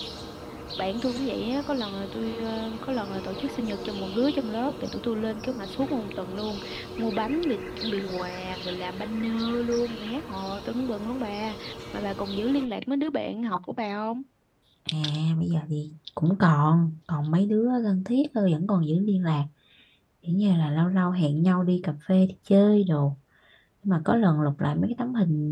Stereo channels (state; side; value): identical; both; correlation 1.00